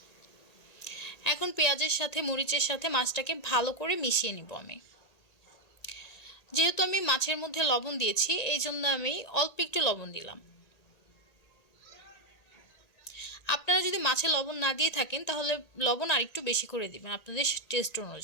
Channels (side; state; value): right; late; 1.8 ms